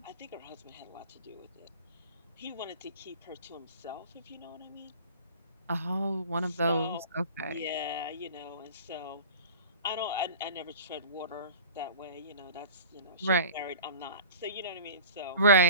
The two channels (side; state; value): both; inverted; correlation -0.39